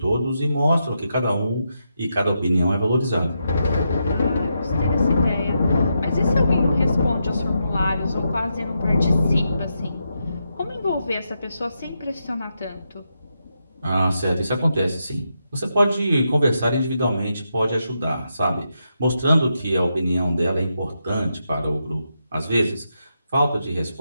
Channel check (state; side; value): inverted; both; correlation -0.84